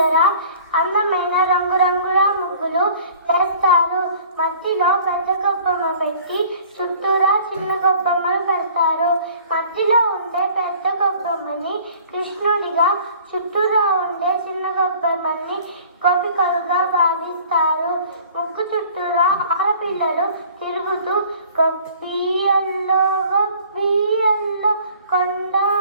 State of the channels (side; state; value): both; inverted; correlation -0.50